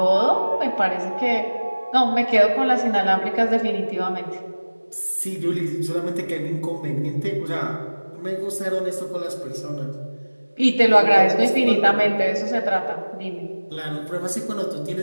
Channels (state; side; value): inverted; both; correlation -1.00